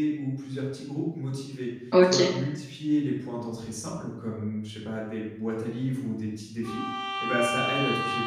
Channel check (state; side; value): identical; both; correlation 1.00